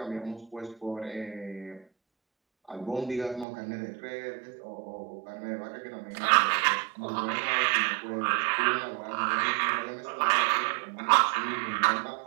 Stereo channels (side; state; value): left; drops out; at 3.5 s